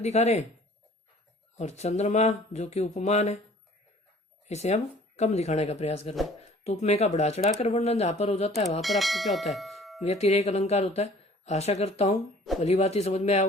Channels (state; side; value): normal; both; correlation 0.52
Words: रहे हैं। और चंद्रमा जो कि उपमान है, इसे हम कम दिखाने का प्रयास कर रहे हैं। तो उपमेय का बढ़ा चढ़ाकर वर्णन जहां पर हो जाता है वहां पर आपको क्या होता है? व्यतिरेक अलंकार होता है। आशा करता हूं भली बात ही समझ में आया